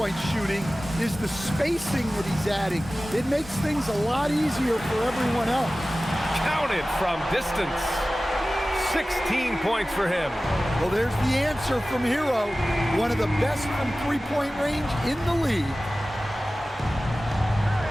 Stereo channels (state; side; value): normal; both; correlation 0.96